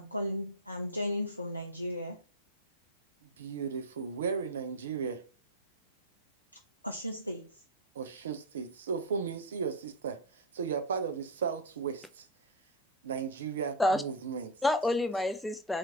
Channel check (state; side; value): normal; both; correlation 0.05